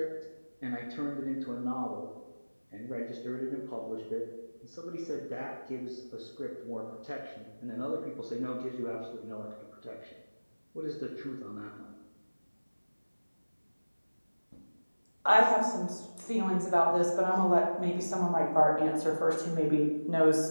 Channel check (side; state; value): both; inverted; correlation -1.00